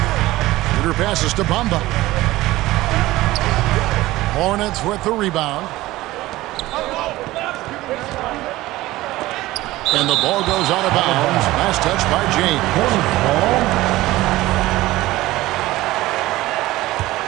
Shooter passes to Bamba. Hornets with the rebound. And the ball goes out of bounds. Last touch by James.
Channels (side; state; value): left; quieter; 17.6 dB